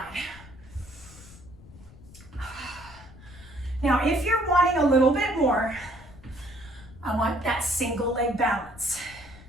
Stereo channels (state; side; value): noise; left; rumble, 20 dB below the sound